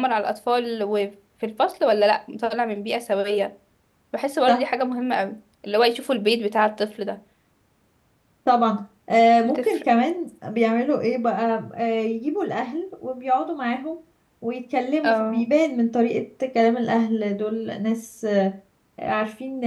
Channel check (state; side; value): identical; both; correlation 1.00